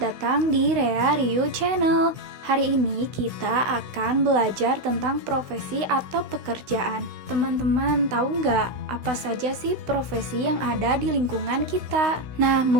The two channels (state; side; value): late; left; 16 ms